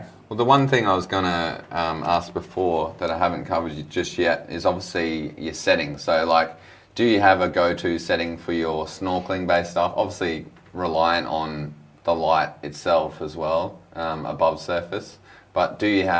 Well, the one thing I was going to ask before that I haven't covered just yet is obviously your settings. So, do you have a go-to setting for your snorkeling-based stuff? Obviously, reliant on the light itself as well, above surface. But do you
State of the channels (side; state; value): both; identical; correlation 1.00